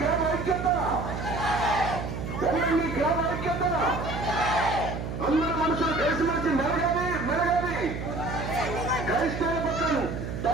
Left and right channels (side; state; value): right; noise; hum, 6 dB below the sound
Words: ఐక్యత, ఒమ్మింగి గ్రామ ఐక్యత. అందరూ మనుషులు కలిసిమెలిసి మెలగాలి. క్రైస్తవ పక్కన